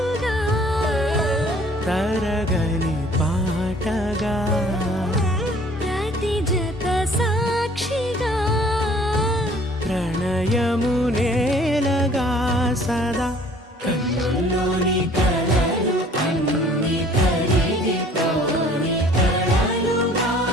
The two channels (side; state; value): both; normal; correlation 0.54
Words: తరగని పాటగా ప్రతి జత సాక్షిగా ప్రణయము నేలగా సదా కన్నుల్లోని కలలు అన్ని కరిగిపోని కలలుగా